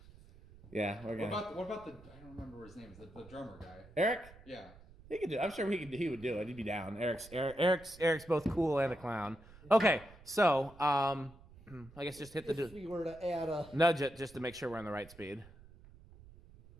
Yeah, we're gonna. What about the? I don't remember his name. The drummer guy. Eric? Yeah. He could do. I'm sure he would do it. He'd be down. Eric's both cool and a clown. Okay, so I guess just hit the If we were to add a. nudge it just to make sure we're on the right speed.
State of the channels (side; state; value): right; noise; rumble, 21 dB below the sound